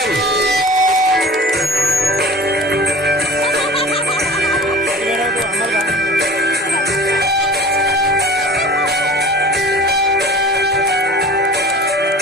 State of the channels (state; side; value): normal; both; correlation 0.39